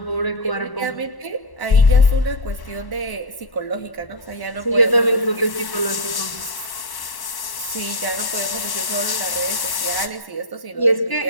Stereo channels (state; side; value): late; right; 1.1 ms